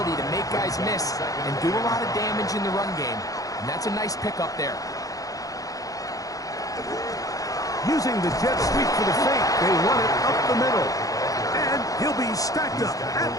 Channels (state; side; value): late; right; 0.17 ms